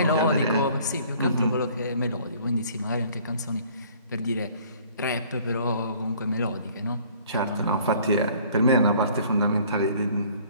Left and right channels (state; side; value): inverted; both; correlation -0.55